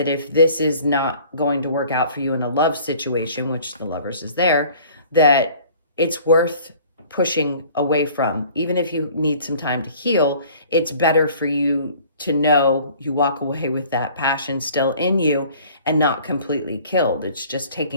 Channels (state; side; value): inverted; both; correlation -0.50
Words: if this is not going to work out for you in a love situation, which the Lovers is there, that it's worth pushing away from. Even if you need some time to heal, it's better for you to know you walk away with that passion still in you and not completely killed. It's just